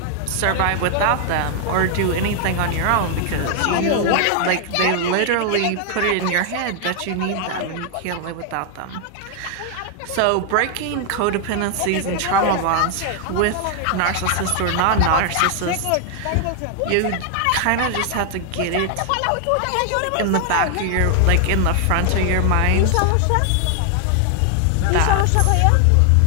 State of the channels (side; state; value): both; different; correlation 0.00